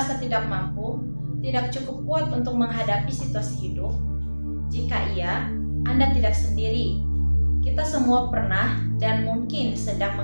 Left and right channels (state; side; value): inverted; both; correlation -1.00